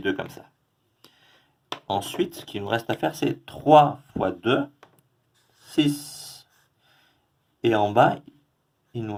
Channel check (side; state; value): both; identical; correlation 1.00